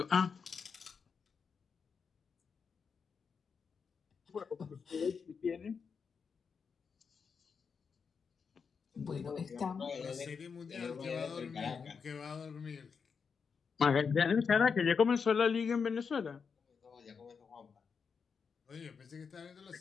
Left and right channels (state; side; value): quieter; right; 5.9 dB